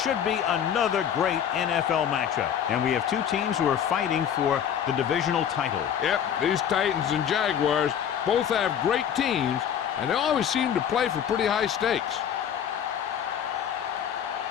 be another great NFL matchup. And we have two teams who are fighting for the divisional title. Yep, these Titans and Jaguars both have great teams, and they always seem to play for pretty high stakes.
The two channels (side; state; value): right; quieter; 8.9 dB